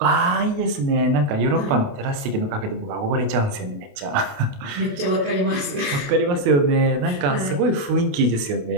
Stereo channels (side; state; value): left; late; 28 ms